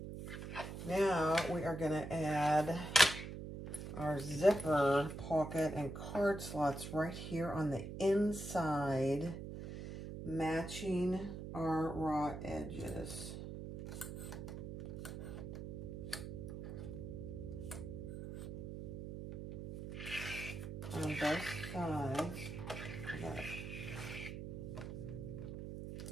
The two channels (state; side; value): noise; right; hum, 8 dB below the sound